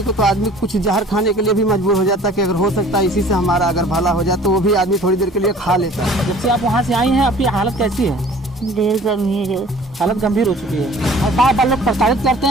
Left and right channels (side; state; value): both; normal; correlation 0.49